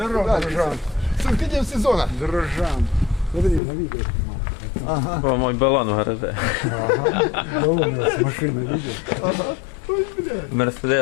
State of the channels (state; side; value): drops out; right; at 3.6 s